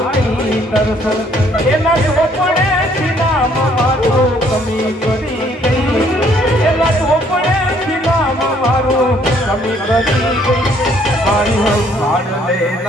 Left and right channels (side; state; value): both; normal; correlation 0.64